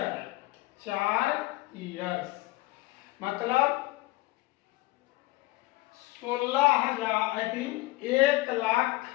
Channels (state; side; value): quieter; right; 19.9 dB